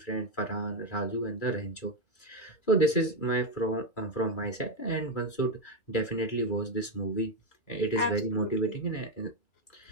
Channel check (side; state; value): right; late; 2.3 ms